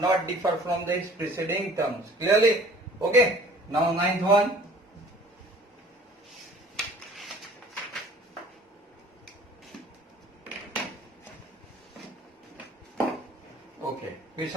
differ from its preceding terms. Clearly? Okay. Now ninth one. Okay.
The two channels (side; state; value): both; normal; correlation 0.50